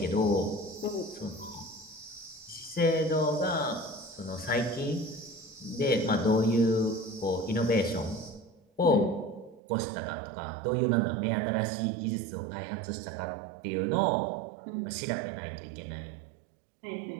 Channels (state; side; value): drops out; left; at 9.6 s